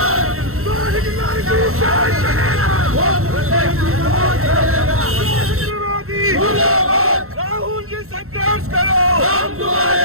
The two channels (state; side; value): late; left; 0.63 ms